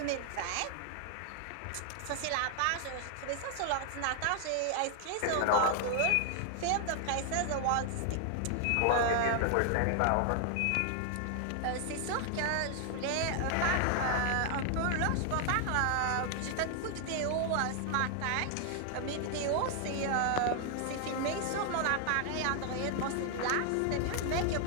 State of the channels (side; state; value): both; different; correlation 0.00